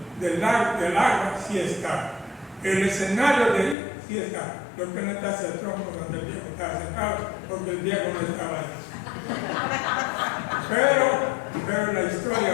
del agua sí está. El escenario de ahí sí está. Lo que no está es el tronco donde el viejo estaba sentado, porque el viejo no estaba ahí. Pero la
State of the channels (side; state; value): right; drops out; at 3.8 s